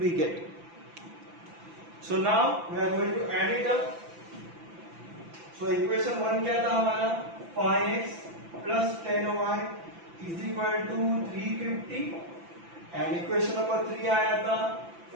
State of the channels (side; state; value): left; late; 5.9 ms